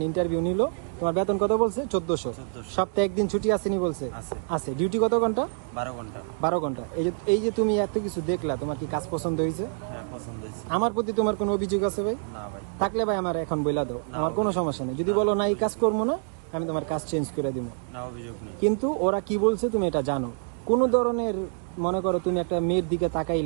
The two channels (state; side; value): silent; left; digital silence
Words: ইন্টারভিউ নিল। তোমার বেতন কত বলছে? 1400। সপ্তাহে একদিন ছুটি আসেনি বলছে? আছে। ডিউটি কত ঘন্টা? 12 ঘন্টা। 12 ঘন্টা। এই যে তুমি এত কিছু দেখলা, তোমার কি কাজ পছন্দ হয়েছে? হ্যাঁ, পছন্দ হয়েছে। আমার প্রতি তোমার কোনো অভিযোগ আছে ভাই? না ভাই। থাকলে ভাই আমার এখন বলে দাও, আমার কোনো সমস্যা নেই। যদি বলো না এই কাজ করবো না, আমি তোমার কাজ চেঞ্জ করে দিব। না, অভিযোগ নেই। কিন্তু ওরা কি বলছে তুমি এটা জানো। কোনো ধরনের মনে করো তুমি একটা মেয়ের দিকে